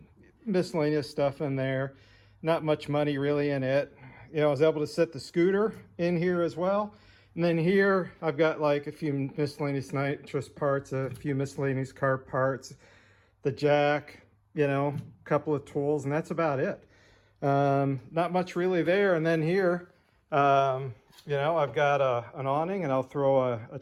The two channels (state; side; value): identical; both; correlation 1.00